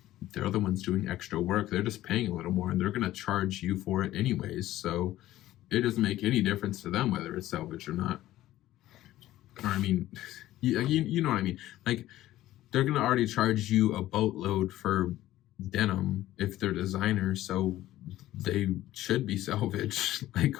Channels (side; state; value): right; quieter; 14.8 dB